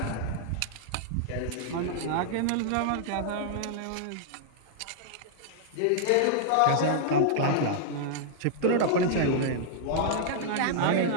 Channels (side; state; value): both; different; correlation -0.01